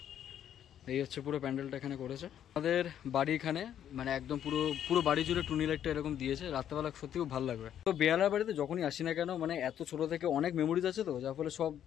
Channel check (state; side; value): quieter; right; 10.1 dB